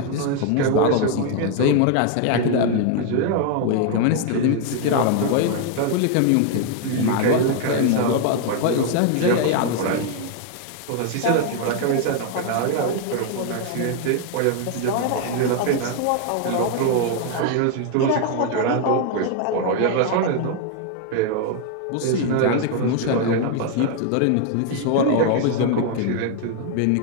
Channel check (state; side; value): different; both; correlation 0.00